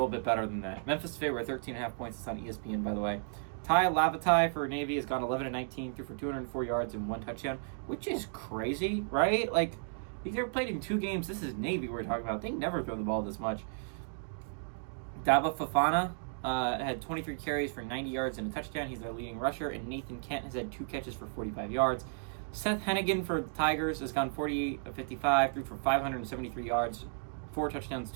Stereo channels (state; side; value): silent; left; digital silence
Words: bit better than that. Memphis favorite 13.5 points. It's on ESPN, by the way. Ty Lavatai for Navy has gone 11-19, threw for 204 yards and 1 touchdown, which is crazy, right? Like, he's ever played in 2 games. This is Navy we're talking about. They never throw the ball this much. Daba Fafana had 23 carries for 90 yards and a touchdown. He's their leading rusher. And Nathan Kent has had 2 catches for 45 yards. Seth Hennigan for the Tigers has gone 48-55, threw for 573 yards, 4 touchdowns,